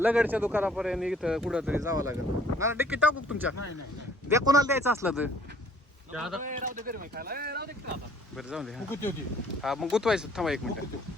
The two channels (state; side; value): normal; both; correlation 0.58